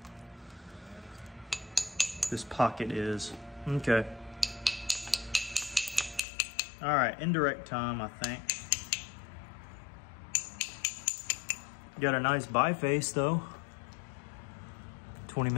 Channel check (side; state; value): right; drops out; at 6.2 s